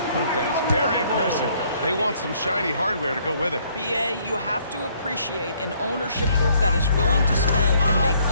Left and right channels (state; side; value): inverted; both; correlation -0.65